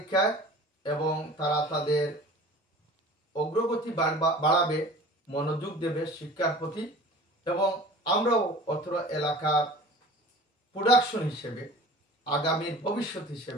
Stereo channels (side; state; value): both; normal; correlation 0.42